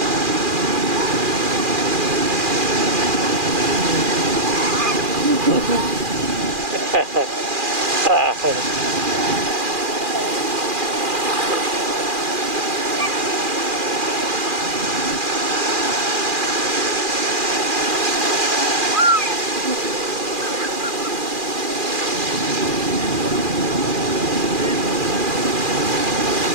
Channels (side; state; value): left; late; 2.4 ms